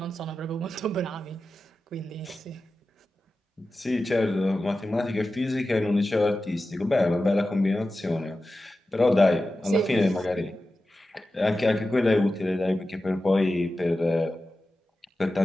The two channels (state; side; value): normal; both; correlation 0.93